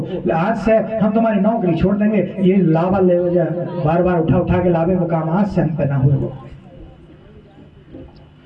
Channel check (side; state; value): both; identical; correlation 1.00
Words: आज से हम तुम्हारी नौकरी छोड़ देंगे, ये लावा ले बार बार उठा उठा के लावे वो काम आज से हम पे ना हुए। वो